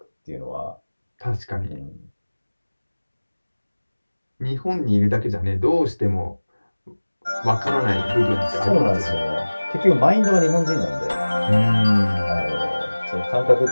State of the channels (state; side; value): inverted; both; correlation -1.00